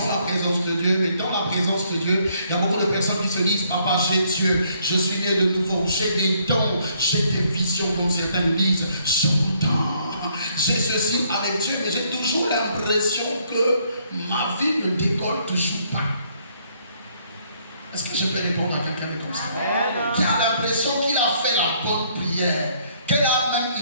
la présence de Dieu. Mais dans la présence de Dieu, il y a beaucoup de personnes qui se disent: papa, j'ai Dieu, je suis né de nouveau, j'ai des dons, j'ai des visions, comme certaines disent, j'entends, j'ai ceci avec Dieu, mais j'ai toujours l'impression que ma vie ne décolle toujours pas. Est-ce que je peux répondre à quelqu'un de comme ça? Qui a l'impression qu'il a fait la bonne prière, qu'elle a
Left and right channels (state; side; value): inverted; both; correlation -0.68